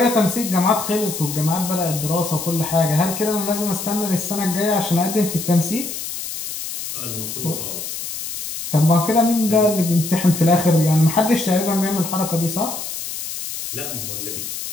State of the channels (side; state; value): left; noise; hiss, 7 dB below the sound